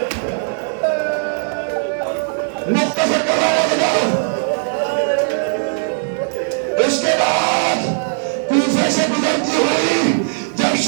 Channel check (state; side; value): silent; left; digital silence